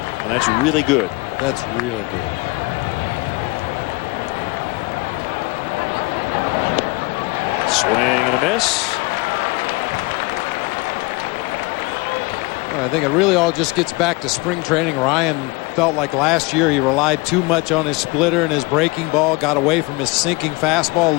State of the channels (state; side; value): quieter; right; 25.3 dB